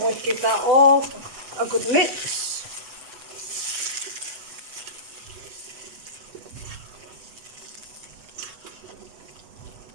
going to give that all a good mix.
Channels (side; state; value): left; late; 8.1 ms